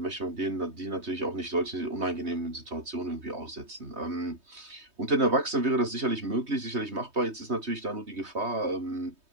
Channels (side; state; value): left; late; 3.2 ms